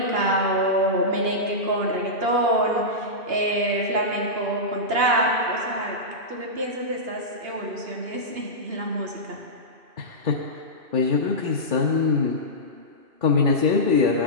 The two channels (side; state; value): left; late; 2.9 ms